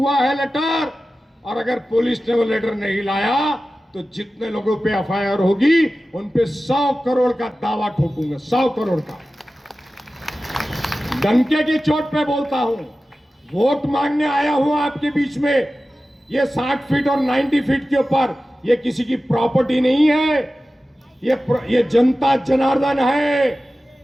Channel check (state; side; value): normal; both; correlation 0.95